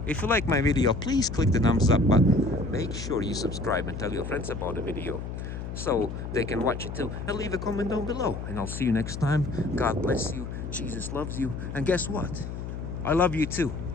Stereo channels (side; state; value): left; noise; hum, 7 dB below the sound